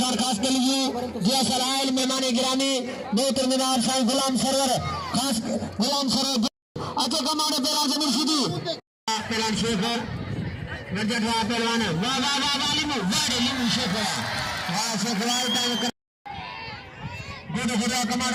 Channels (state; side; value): identical; both; correlation 1.00